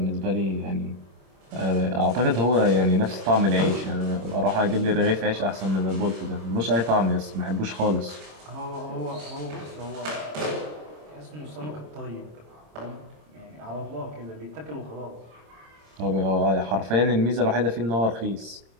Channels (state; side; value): late; left; 26 ms